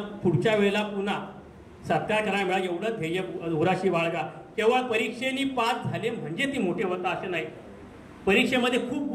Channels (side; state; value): both; identical; correlation 1.00